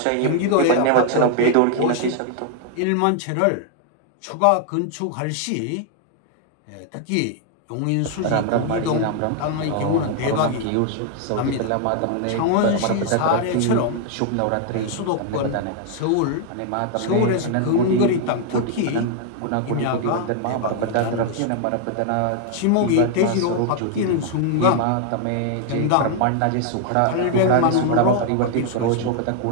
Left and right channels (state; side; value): different; both; correlation 0.00